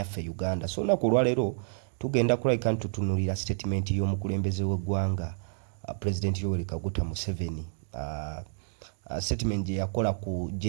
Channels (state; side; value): silent; left; digital silence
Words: Uganda. So na kulwalero tugenda kulabika tutunuulira statement y'omukulembeze w'eggwanga President Yoweri Kaguta Museveni. Statement gye yakola ku